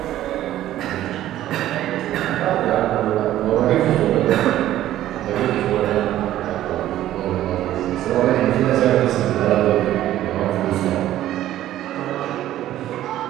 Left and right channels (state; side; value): quieter; left; 13.3 dB